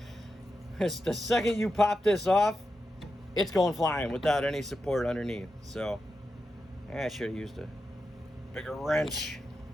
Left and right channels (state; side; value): normal; both; correlation 0.88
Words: the second you pop this off, it's going flying without any support underneath. So I should have used a bigger wrench.